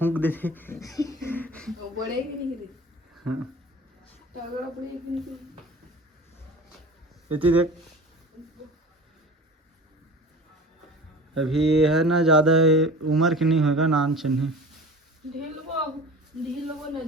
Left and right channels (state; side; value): normal; both; correlation 0.38